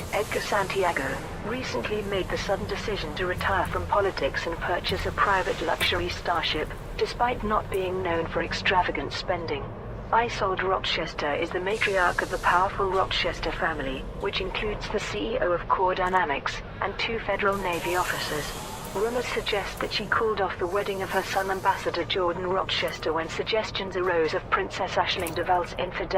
Edgar Santiago, recently made the sudden decision to retire from politics and purchase a private luxury starship, despite not being known for extravagant spending. Isolde Rochester is the matriarch of the powerful Rochester family, which includes the CEO of Core Dynamics and 2 Federal Navy officers. Rumors suggest that she called off the wedding of her son Ambassador Jordan Rochester when suggestions arose of Princess Aisling Deval's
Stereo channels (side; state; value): both; identical; correlation 1.00